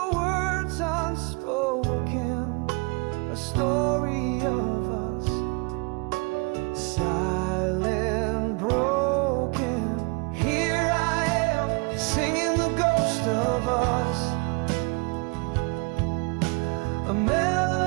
words unspoken, a story of us, silent, broken. Here I am, singing the ghost of us, a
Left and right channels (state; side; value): quieter; left; 30.8 dB